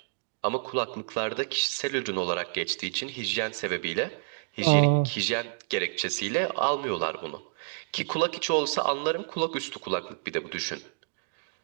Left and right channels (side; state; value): left; silent; digital silence